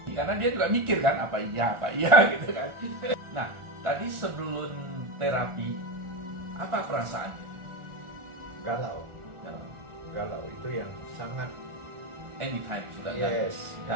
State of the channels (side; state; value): left; late; 1.4 ms